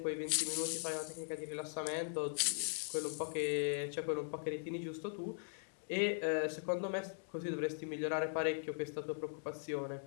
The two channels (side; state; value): right; silent; digital silence